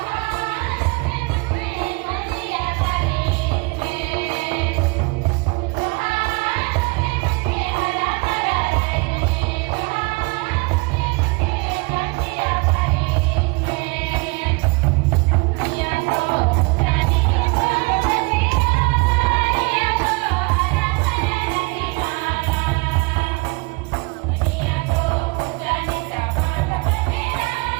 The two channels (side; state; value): left; quieter; 28.5 dB